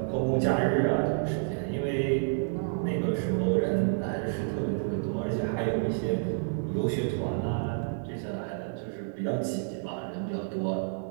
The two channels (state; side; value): silent; left; digital silence